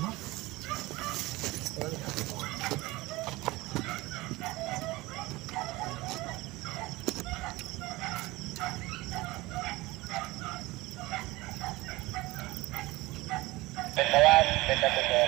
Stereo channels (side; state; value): left; quieter; 20.6 dB